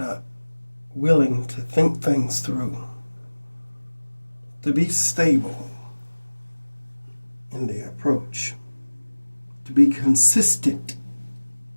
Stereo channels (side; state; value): both; inverted; correlation -1.00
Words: are willing to think things through, to be stable in their approach, to be consistent